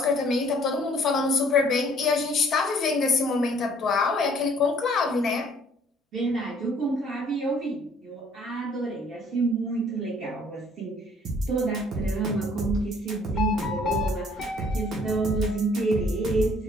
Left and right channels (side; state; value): both; normal; correlation 0.59